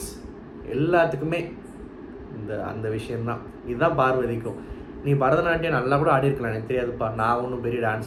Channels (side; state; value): both; identical; correlation 1.00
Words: எல்லாத்துக்குமே அந்த விஷயந்தான். இதுதான் பார்வதிக்கும். நீ பரதநாட்டியம் நல்லா கூட ஆடிருக்கலாம், எனக்கு தெரியாதுப்பா. நான் ஒன்றும் பெரிய